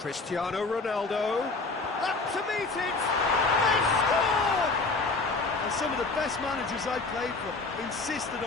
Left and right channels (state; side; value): quieter; right; 3.8 dB